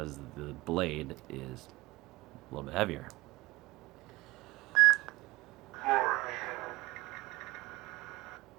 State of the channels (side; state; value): left; quieter; 20.1 dB